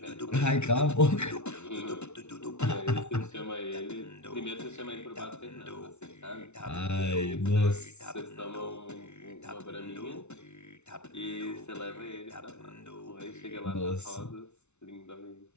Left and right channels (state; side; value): late; right; 0.82 ms